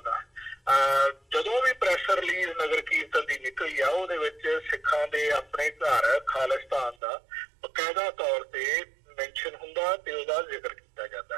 ਜਦੋਂ ਵੀ ਪ੍ਰੈਸ ਰਿਲੀਜ਼ ਨਗਰ ਕੀਰਤਨ ਦੀ ਨਿਕਲੀ ਆ ਉਹਦੇ ਵਿੱਚ ਸਿੱਖਾਂ ਦੇ ਆਪਣੇ ਘਰ ਖਾਲਿਸਤਾਨ ਦਾ ਬਕਾਇਦਾ ਤੌਰ ਤੇ ਮੈਂਸ਼ਨ ਹੁੰਦਾ ਤੇ ਉਹਦਾ ਜ਼ਿਕਰ ਕੀਤਾ ਜਾਂਦਾ।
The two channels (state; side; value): drops out; left; at 7.0 s